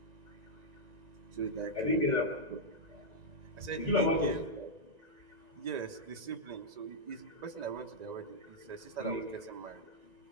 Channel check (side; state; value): left; late; 1.9 ms